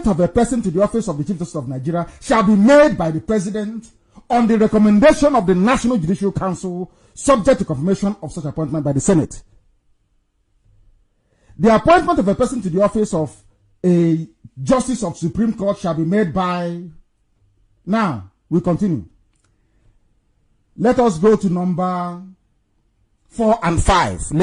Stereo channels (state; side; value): identical; both; correlation 1.00